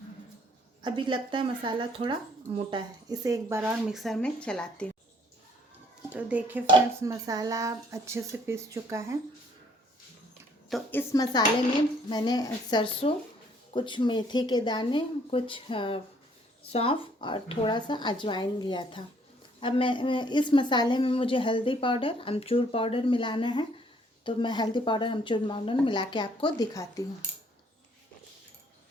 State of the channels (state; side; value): normal; both; correlation 0.63